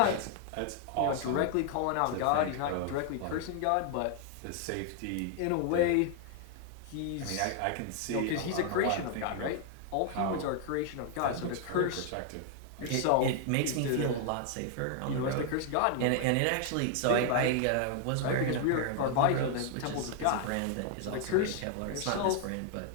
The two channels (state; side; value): different; both; correlation 0.00